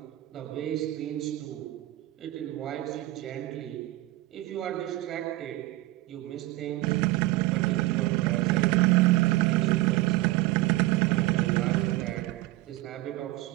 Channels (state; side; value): quieter; left; 18.2 dB